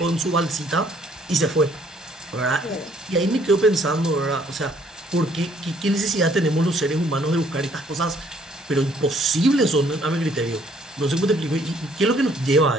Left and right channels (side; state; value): both; normal; correlation 0.63